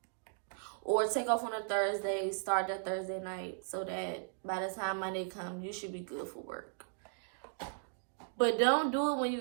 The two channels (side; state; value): left; silent; digital silence